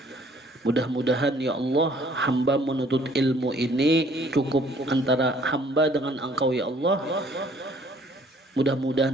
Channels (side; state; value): both; normal; correlation 0.59